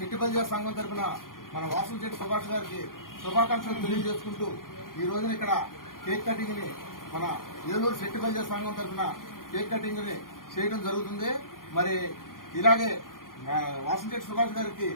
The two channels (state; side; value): late; right; 0.91 ms